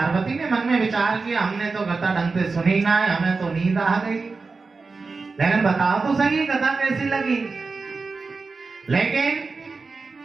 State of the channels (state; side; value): quieter; left; 4.2 dB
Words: ने मन में विचार किया, हमने तो कथा ढंग से सुनी ना है, हमें तो नींद आ गई, लेकिन बताओ तो सही कथा कैसी लगी। लेकिन